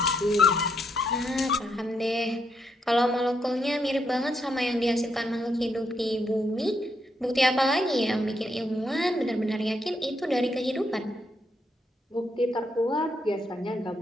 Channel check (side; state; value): both; normal; correlation 0.78